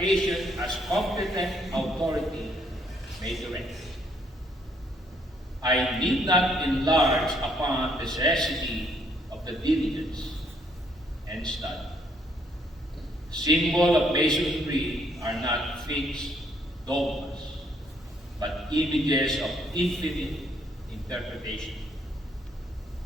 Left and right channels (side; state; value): both; normal; correlation 0.69